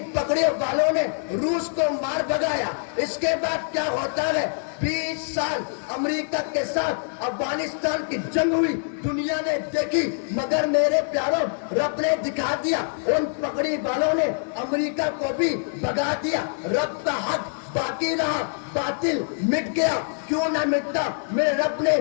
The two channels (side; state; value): right; silent; digital silence